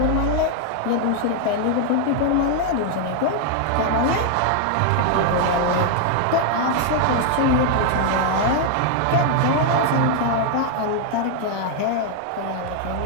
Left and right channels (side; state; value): both; different; correlation 0.00